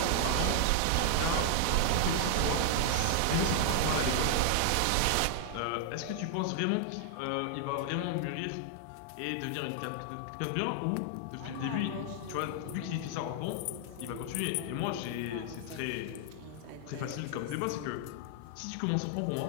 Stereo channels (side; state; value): both; different; correlation 0.00